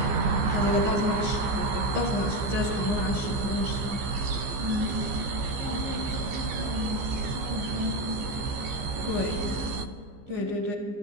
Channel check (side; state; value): left; late; 15 ms